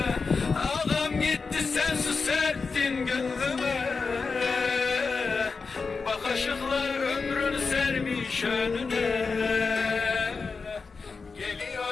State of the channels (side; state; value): right; quieter; 4.7 dB